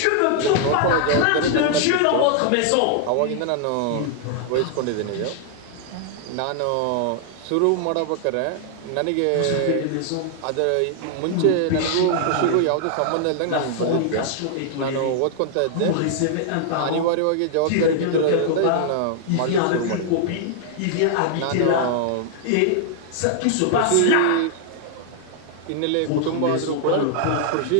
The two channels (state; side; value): different; both; correlation -0.01